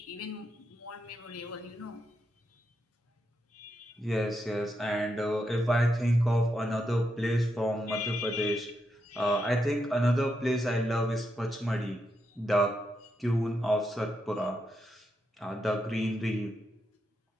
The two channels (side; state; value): both; normal; correlation 0.83